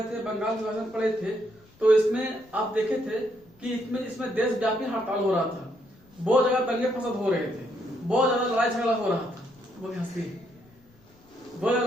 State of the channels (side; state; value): left; noise; rumble, 29 dB below the sound